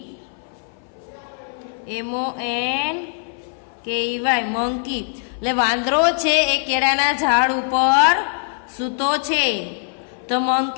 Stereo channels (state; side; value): silent; right; 57 dB below the other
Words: MONKEY monkey. એટલે વાંદરો છે એ કેળાના ઝાડ ઉપર સૂતો છે. તો